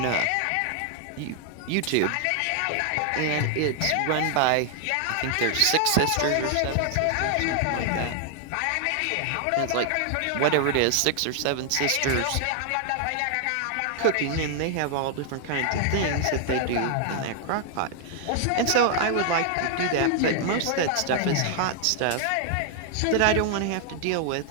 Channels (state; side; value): different; both; correlation 0.00